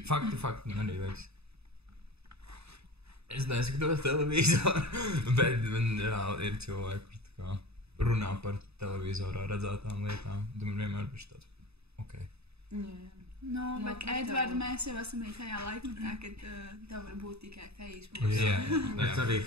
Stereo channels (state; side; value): late; left; 0.79 ms